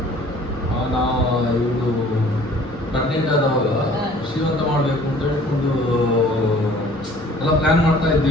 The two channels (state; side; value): normal; both; correlation 0.52